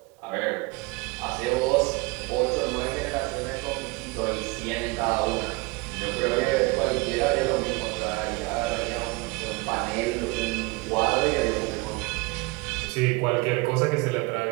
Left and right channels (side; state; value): left; quieter; 25.2 dB